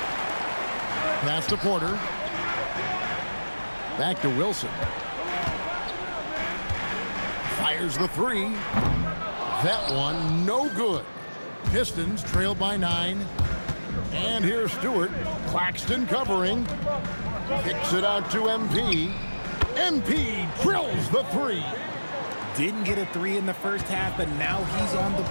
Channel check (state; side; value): inverted; both; correlation -1.00